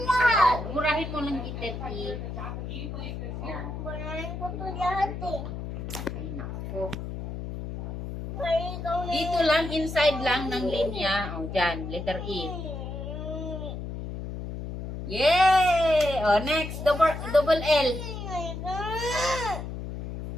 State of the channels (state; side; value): noise; left; hum, 7 dB below the sound